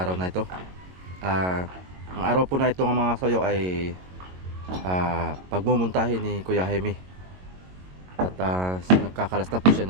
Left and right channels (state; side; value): late; left; 22 ms